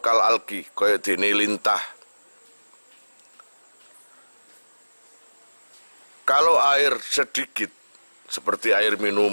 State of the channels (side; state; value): both; inverted; correlation -1.00